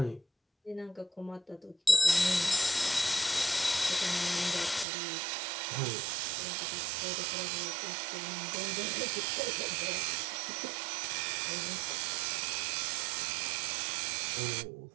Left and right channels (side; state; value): left; drops out; at 4.9 s